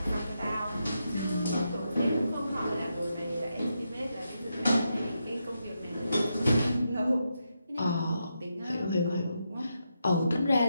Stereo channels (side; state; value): both; inverted; correlation -0.84